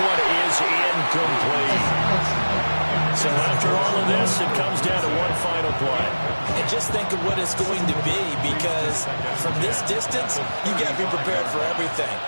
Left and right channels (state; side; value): inverted; both; correlation -1.00